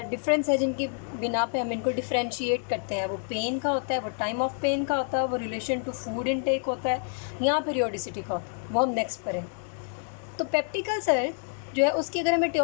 डिफरेंस है जिनकी बिना पे हम इनको डिफ्रेंशिएट करते हैं। वो पेन का होता है, वो टाइम ऑफ पेन का होता है, वो रिलेशन टू फूड इनटेक होता है, या पीरियोडिसिटी का होता है। वो हम नेक्स्ट पढ़ें। तो पेप्टिक अल्सर जो है उसकी अगर हम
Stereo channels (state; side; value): silent; right; 59 dB below the other